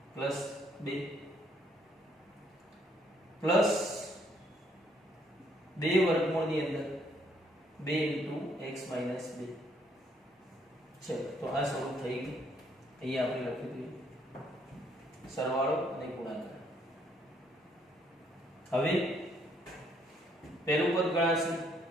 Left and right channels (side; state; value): both; normal; correlation 0.68